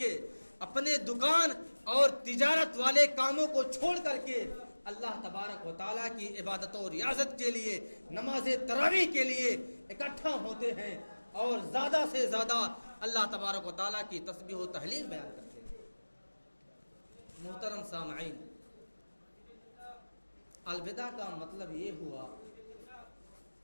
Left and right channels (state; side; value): inverted; both; correlation -1.00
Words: اپنے دکان اور تجارت والے کاموں کو چھوڑ کر کے اللہ تبارک و تعالیٰ کی عبادت و ریاضت کے لیے، نماز تراویح کے لیے اکٹھا ہوتے ہیں اور زیادہ سے زیادہ اللہ تبارک و تعالیٰ کی تسبیح و تہلیل بیان کرتے ہیں۔ محترم سامعین، الوداع کا مطلب یہ ہوا